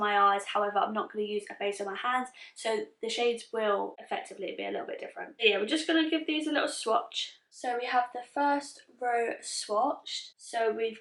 eyes, however I'm not going to use a base on my hands, so the shades will effectively be a little bit different. So yeah, we're just going to give these a little swatch. So we have the first row swatched. So we've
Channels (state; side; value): identical; both; correlation 1.00